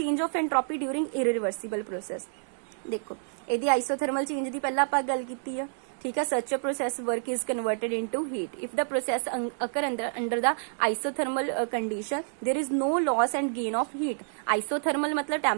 of entropy during irreversible process. देखो इहदी आइसोथर्मल चेंज दी पहला आपां गल कीती है, ठीक है। Such a process work is converted into heat if the process occur under the isothermal condition there is no loss and gain of heat। isothermal मतलब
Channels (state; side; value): silent; left; 59 dB below the other